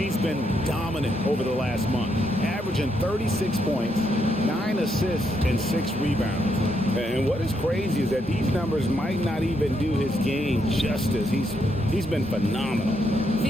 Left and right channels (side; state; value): both; normal; correlation 0.77